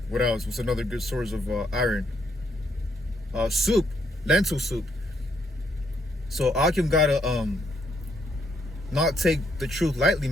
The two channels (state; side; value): normal; both; correlation 0.74